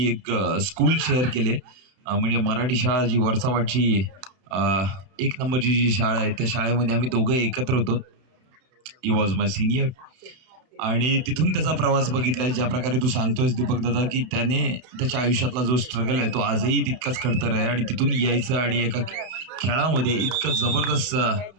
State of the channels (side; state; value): left; late; 32 ms